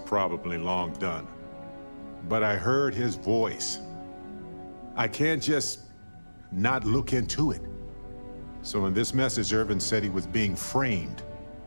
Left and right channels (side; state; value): both; inverted; correlation -1.00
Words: long done, but I heard his voice. I can't just not look into it. So in this message, Irvin said he was being framed.